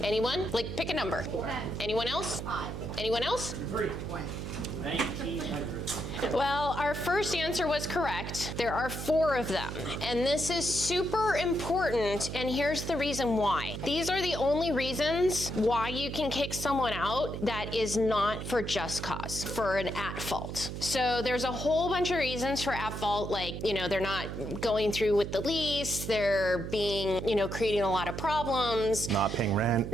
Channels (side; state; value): right; noise; hum, 6 dB below the sound